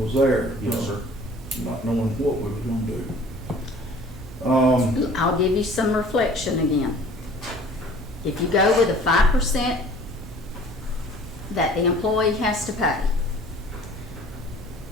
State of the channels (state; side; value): normal; both; correlation 0.49